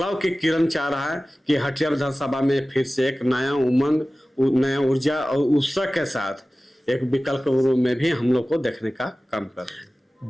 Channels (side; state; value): both; normal; correlation 0.97